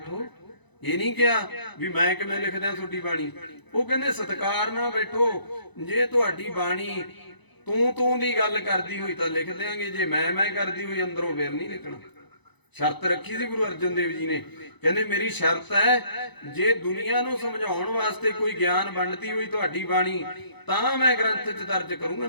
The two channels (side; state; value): right; late; 1.0 ms